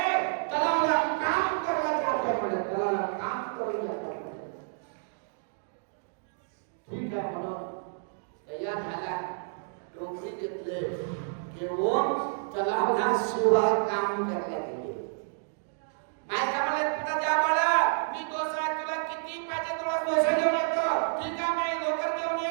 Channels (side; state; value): left; silent; digital silence